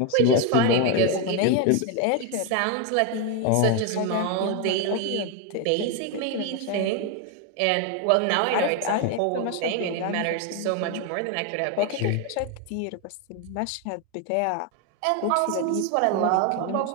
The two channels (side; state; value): both; different; correlation 0.01